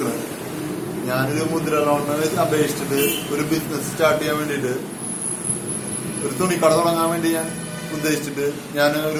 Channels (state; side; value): identical; both; correlation 1.00